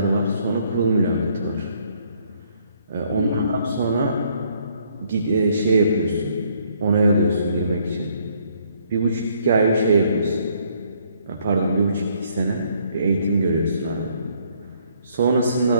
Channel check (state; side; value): inverted; both; correlation -0.67